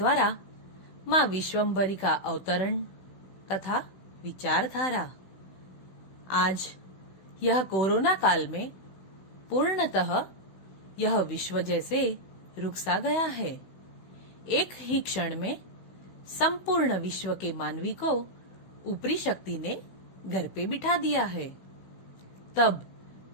मां विश्वम्भरी का अवतरण तथा विचारधारा। आज यह कोरोना काल में पूर्णतः यह विश्व जैसे रुक सा गया है। एक ही क्षण में संपूर्ण विश्व के मानवी को ऊपरी शक्ति ने घर पे बिठा दिया है। तब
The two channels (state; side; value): late; right; 16 ms